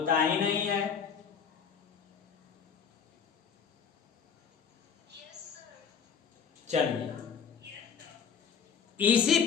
ही नहीं है। चलिए इसी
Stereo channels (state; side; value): quieter; right; 6.8 dB